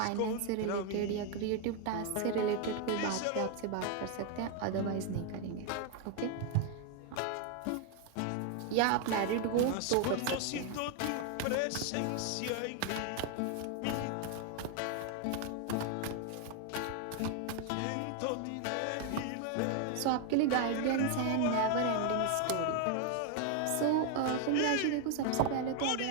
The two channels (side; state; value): both; different; correlation 0.01